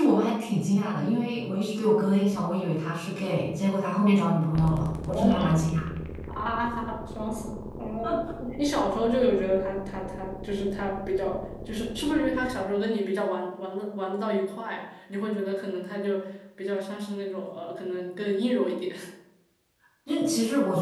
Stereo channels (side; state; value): both; identical; correlation 1.00